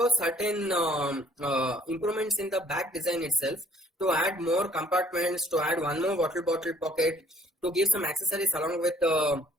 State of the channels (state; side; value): normal; both; correlation 0.57